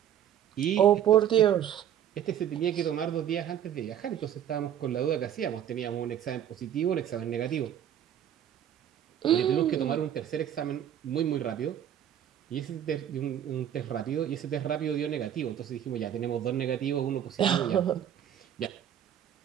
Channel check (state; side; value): quieter; left; 10.1 dB